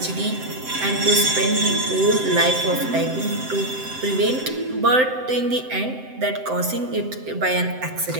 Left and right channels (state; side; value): late; left; 7.8 ms